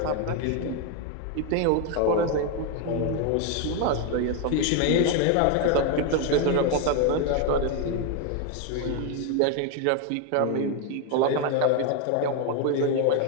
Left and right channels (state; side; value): different; both; correlation 0.01